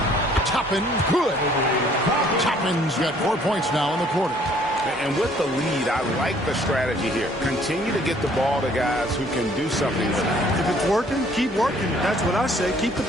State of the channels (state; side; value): normal; both; correlation 0.59